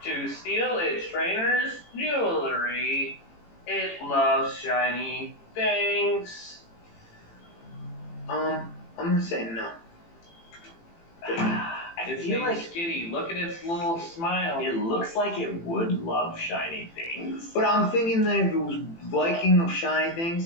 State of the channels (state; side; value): late; right; 18 ms